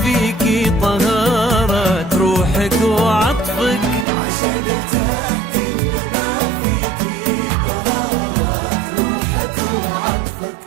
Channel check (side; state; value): left; drops out; at 4.0 s